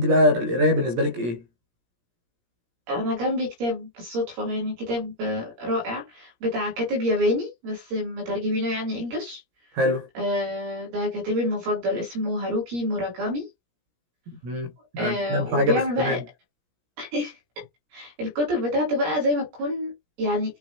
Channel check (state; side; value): late; left; 17 ms